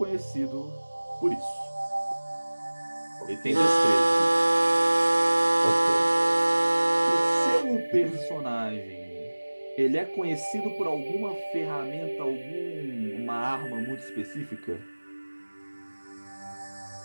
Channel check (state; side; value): inverted; both; correlation -1.00